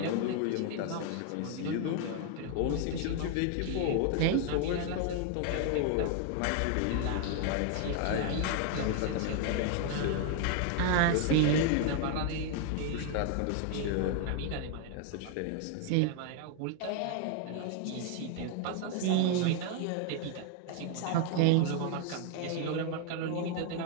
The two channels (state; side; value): different; both; correlation 0.00